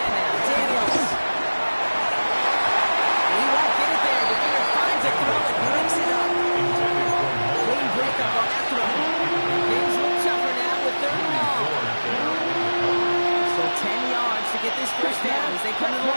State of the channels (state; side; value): inverted; both; correlation -1.00